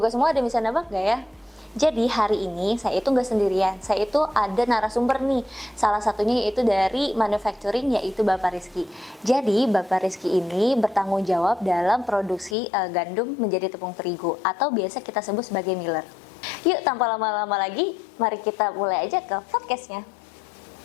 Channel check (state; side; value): drops out; right; at 12.6 s